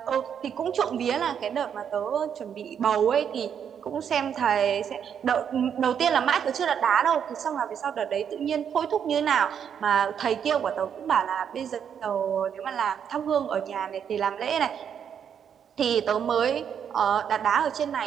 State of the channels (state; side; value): quieter; left; 8.1 dB